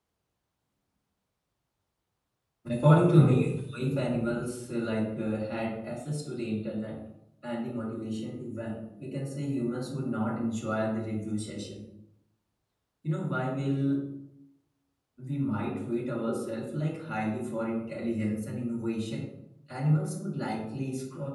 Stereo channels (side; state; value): both; identical; correlation 1.00